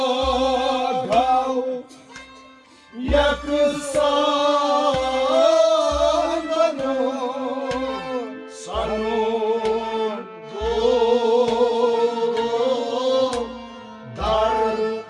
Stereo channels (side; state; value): both; identical; correlation 1.00